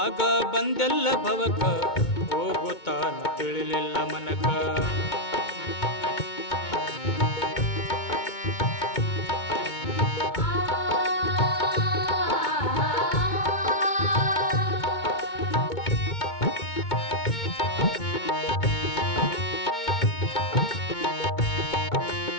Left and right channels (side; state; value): right; late; 2.2 ms